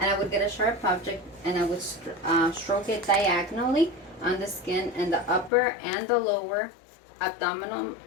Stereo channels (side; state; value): right; drops out; at 5.5 s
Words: and I would get a sharp object, and I would stroke it diagonally on the skin in the upper and the lower abdominal